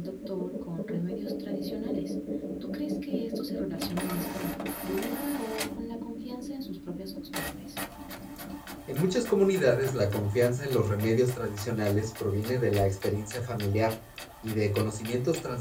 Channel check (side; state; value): both; identical; correlation 1.00